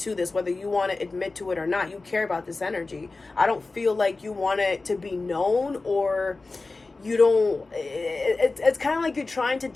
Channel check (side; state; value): right; quieter; 3.5 dB